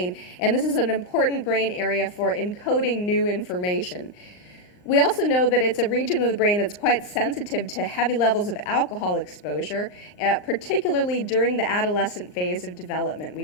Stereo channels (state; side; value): late; right; 39 ms